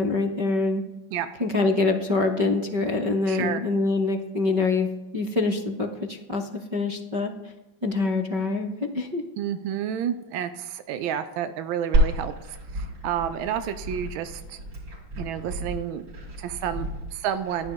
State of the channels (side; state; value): left; late; 5.3 ms